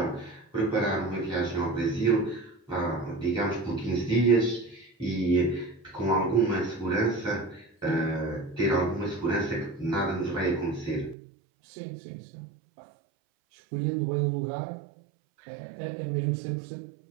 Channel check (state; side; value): drops out; left; at 11.2 s